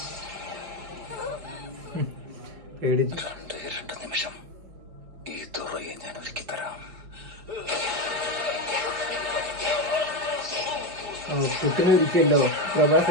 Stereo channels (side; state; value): left; late; 5.2 ms